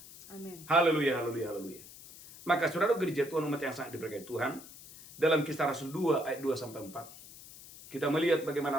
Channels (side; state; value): left; noise; hiss, 17 dB below the sound